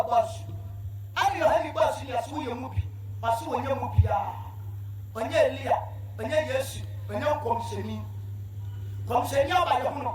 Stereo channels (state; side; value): identical; both; correlation 1.00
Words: bus. And your heavy bus in your swing movie, or so when you movie when you're Leah, when you're yes, when you're concerning by the moon.